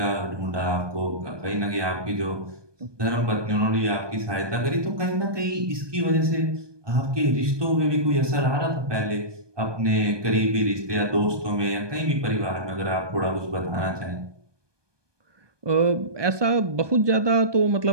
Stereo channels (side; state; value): left; late; 1.2 ms